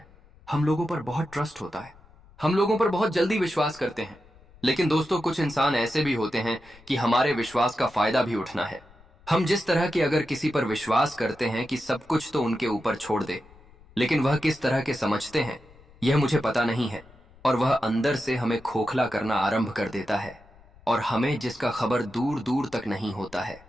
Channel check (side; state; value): left; noise; rumble, 26 dB below the sound